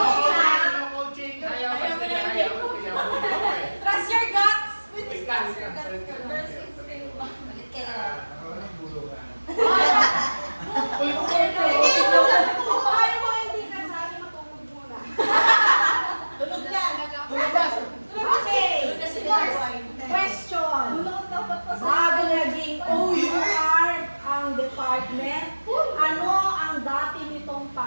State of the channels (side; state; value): both; inverted; correlation -1.00